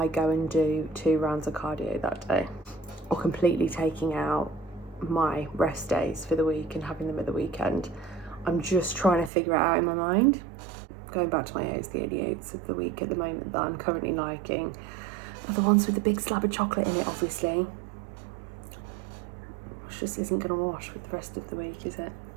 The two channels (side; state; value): left; drops out; at 9.3 s